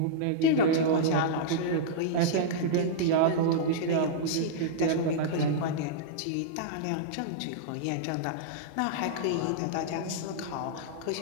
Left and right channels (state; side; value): different; both; correlation -0.02